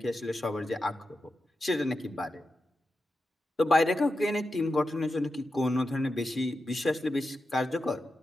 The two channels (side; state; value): both; normal; correlation 0.90